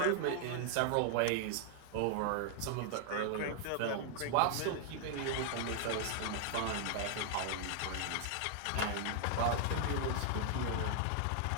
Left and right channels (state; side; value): different; both; correlation 0.00